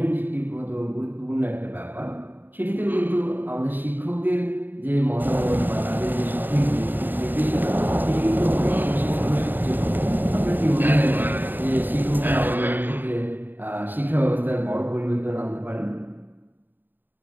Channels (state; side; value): late; left; 0.091 ms